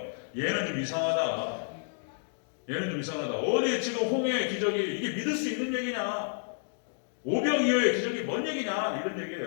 얘는 좀 이상하다. 얘는 좀 이상하다. 어디 지금 홍해의 기적이 이게 믿을 수 있는 얘기냐? 오병이어의 기적이 뭔 얘기냐? 이런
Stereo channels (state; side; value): silent; right; digital silence